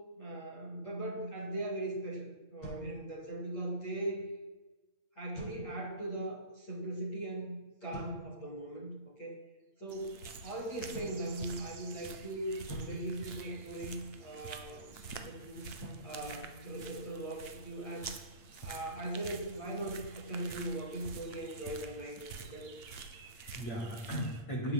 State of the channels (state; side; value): late; right; 8.7 ms